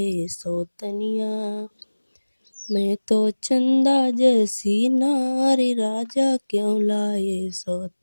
सौतनिया। मैं तो चंदा जैसी नारी राजा क्यों लाए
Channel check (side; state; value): both; inverted; correlation -1.00